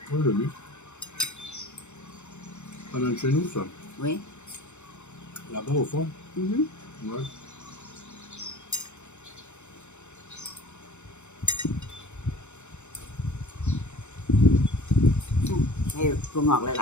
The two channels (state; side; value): late; right; 0.83 ms